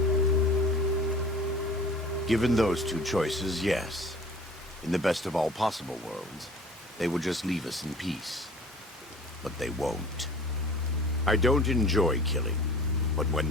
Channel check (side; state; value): both; normal; correlation 0.45